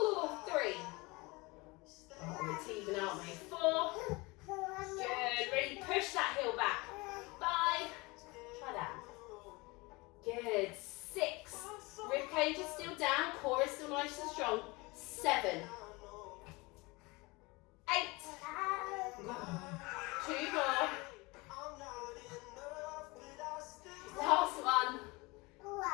3. Oh, it's even, aren't we? 4. Good. Really push that heel back. 5. Try that. Good. 6. Rib cage is still down. Core is still nice and strong. 7. 8. 2 more. Last one.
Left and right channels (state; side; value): quieter; right; 24.6 dB